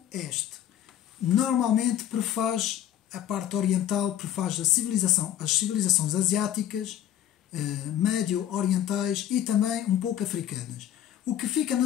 Normalmente prefaz a parte oriental, prefaz as civilizações asiáticas, médio-orientais e também um pouco africanas. O que fica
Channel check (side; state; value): right; quieter; 11.2 dB